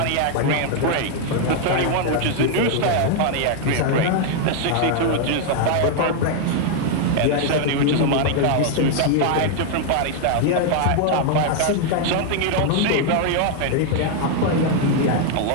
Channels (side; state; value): both; different; correlation 0.00